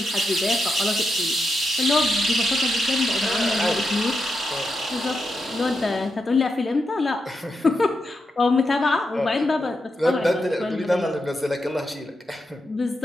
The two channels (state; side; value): normal; both; correlation 0.85